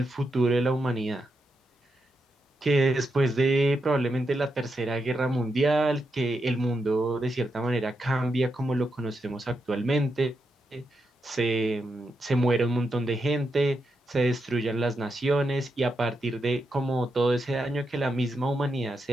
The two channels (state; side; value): normal; both; correlation 0.84